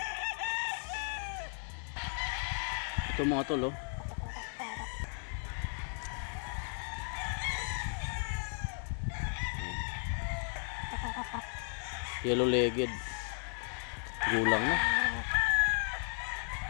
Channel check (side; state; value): right; silent; 54 dB below the other